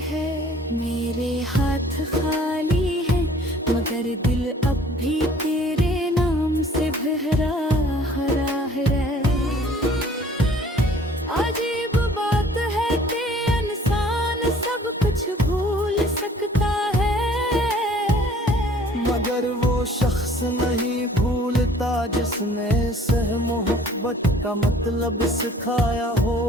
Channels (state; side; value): normal; both; correlation 0.54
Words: मेरे हाथ खाली हैं, मगर दिल अब भी तेरे नाम से भरा हरा है। अजीब बात है कि इंसान सब कुछ भूल सकता है, मगर वो शख्स नहीं भूलता जिसने सह मोहब्बत का मतलब सिखाया हो।